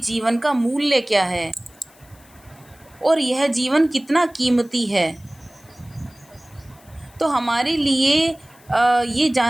का मूल्य क्या है और यह जीवन कितना कीमती है। तो हमारे लिए ये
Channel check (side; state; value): left; noise; hiss, 27 dB below the sound